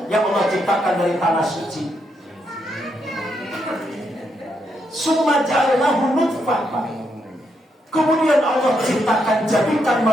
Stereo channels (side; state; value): both; normal; correlation 0.79